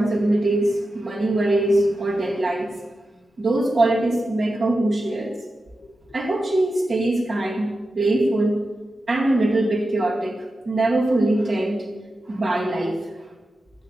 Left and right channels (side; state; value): both; normal; correlation 0.91